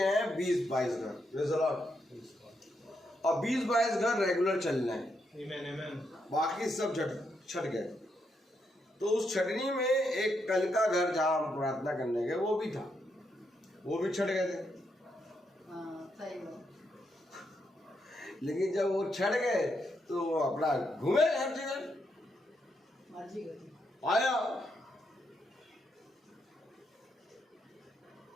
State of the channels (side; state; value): both; normal; correlation 0.80